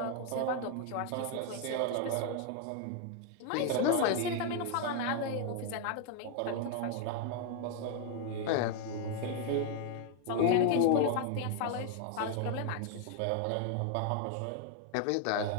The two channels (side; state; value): both; different; correlation 0.00